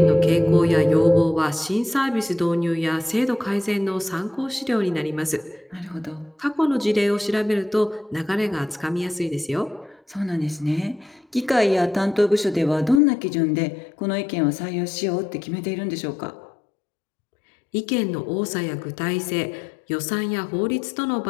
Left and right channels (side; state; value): right; drops out; at 13.0 s